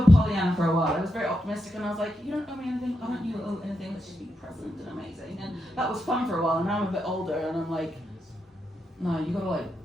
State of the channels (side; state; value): both; normal; correlation 0.85